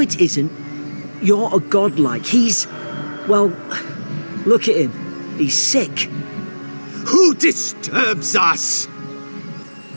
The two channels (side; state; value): both; inverted; correlation -1.00